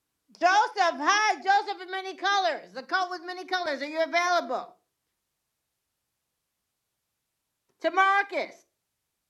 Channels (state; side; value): identical; both; correlation 1.00